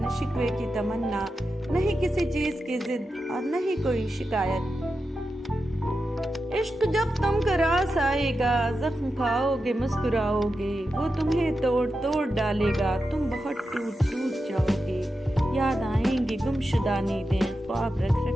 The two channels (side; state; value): both; normal; correlation 0.89